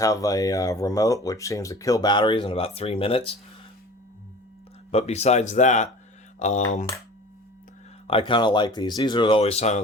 a remote, which seems to kill batteries in about 3 minutes. But besides that, I kind of like these. These are always some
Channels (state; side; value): normal; both; correlation 0.41